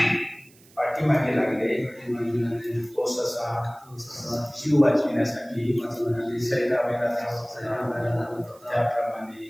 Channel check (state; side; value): noise; right; hiss, 27 dB below the sound